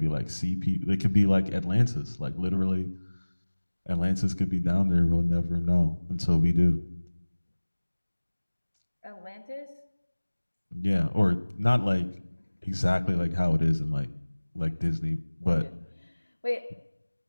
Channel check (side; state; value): both; inverted; correlation -1.00